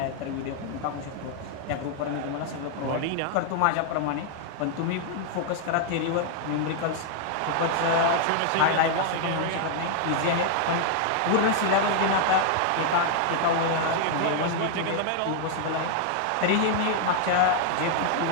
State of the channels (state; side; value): different; both; correlation -0.01